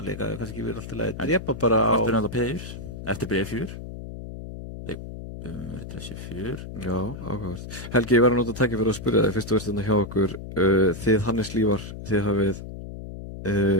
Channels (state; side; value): noise; left; hum, 10 dB below the sound